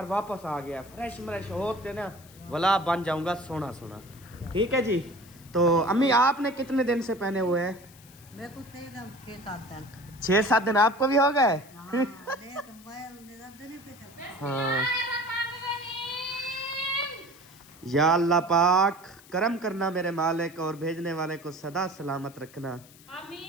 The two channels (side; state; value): left; noise; hiss, 23 dB below the sound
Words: वापस आ गया फ्रेश होते ना वाला बन जाऊंगा सोना। ठीक है जी। तो अम्मी आपने कितने दिन से पहने हुए हैं? मेरे को थे एकदम 6-7 दिन। 6-7 दिन आपको भी हो गए? हाँ देख मैं निरंतर नहीं पीता। हाँ या अल्लाह पाक करम करना मेरे मालिक और भेजने वाले को सदा सलामत रखना।